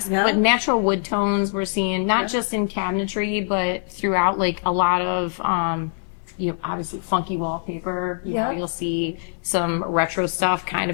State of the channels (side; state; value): right; silent; 63 dB below the other